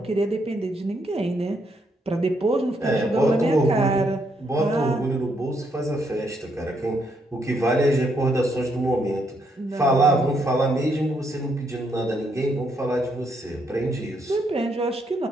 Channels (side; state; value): both; normal; correlation 0.75